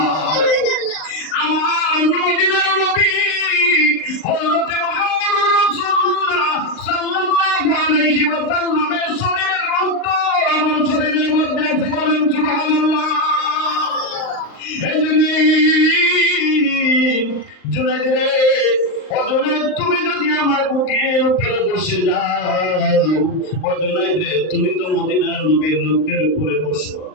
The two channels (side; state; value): right; late; 38 ms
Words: আমার মদিনার নবী হযরত মুহাম্মদুর রাসূলুল্লাহ সাল্লাল্লাহু আলাইহি ওয়া সাল্লামের শরীরের রক্ত আমার শরীরের মধ্যে আছে। বলেন সুবহানাল্লাহ। জুনাইদ রে, ও জুনাইদ, তুমি যদি আমার বুকের উপরে বসে যাও, ও জুনাইদ রে, তুমি তো মদিনার নবীর লোকের উপরে বসো।